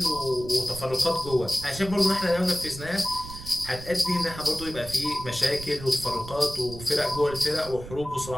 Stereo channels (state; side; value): noise; right; rumble, 12 dB below the sound